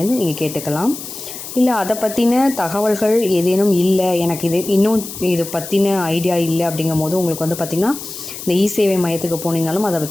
நீங்கள் கேட்டுக்கலாம். இல்லை அதை பற்றின தகவல்கள் ஏதேனும் இல்லை, எனக்கு இது பற்றின ஐடியா இல்லை அப்படிங்கும் போது உங்களுக்கு வந்து பார்த்திங்கன்னா இந்த இ-சேவை மையத்துக்கு போனீங்கனாலும் அதை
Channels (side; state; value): left; noise; hiss, 10 dB below the sound